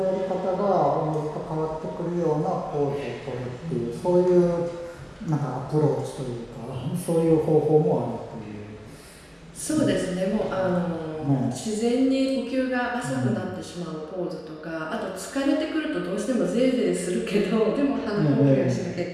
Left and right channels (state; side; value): identical; both; correlation 1.00